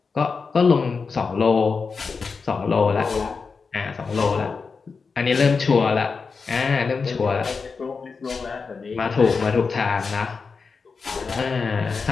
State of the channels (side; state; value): right; quieter; 4.9 dB